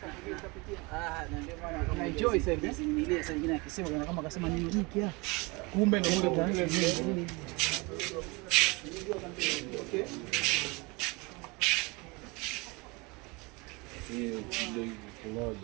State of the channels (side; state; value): left; quieter; 26.6 dB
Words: Na enjoy sasa ile sasa nyingine akisema kama akasema nini hiki kumbe ndio nini. Okay. Ndio